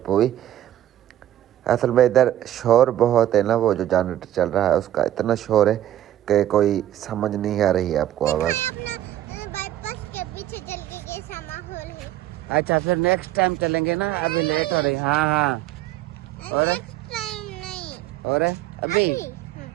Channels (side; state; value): left; quieter; 12.6 dB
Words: हुई। असल में इधर शोर बहुत है ना, वो जो जनरेटर चल रहा है उसका इतना शोर है कि कोई समझ नहीं आ रही है आपको आवाज़। अच्छा फिर नेक्स्ट टाइम चलेंगे ना, अभी लेट हो रही। हाँ हाँ और और अभी